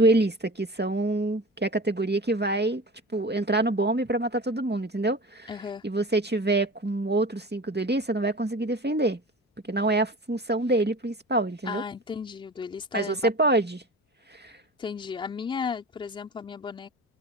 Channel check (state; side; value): normal; both; correlation 0.36